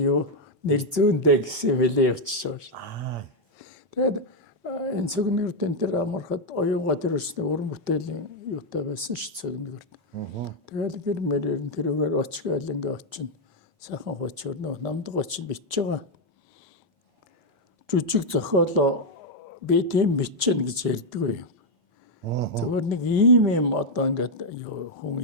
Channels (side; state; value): left; late; 5.1 ms